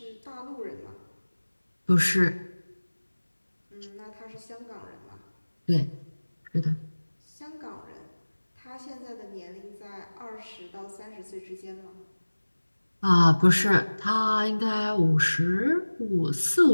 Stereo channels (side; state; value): both; inverted; correlation -1.00